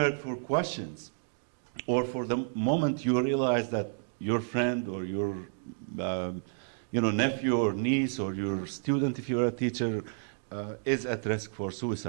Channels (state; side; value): silent; left; digital silence